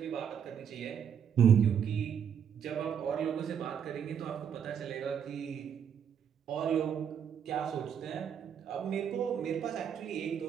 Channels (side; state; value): left; quieter; 8.1 dB